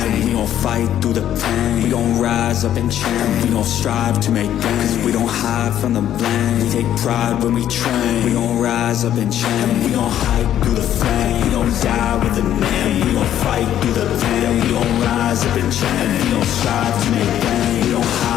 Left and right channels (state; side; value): quieter; right; 11.1 dB